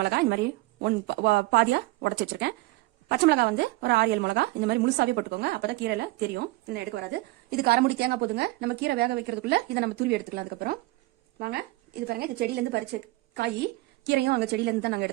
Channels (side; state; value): left; quieter; 20.1 dB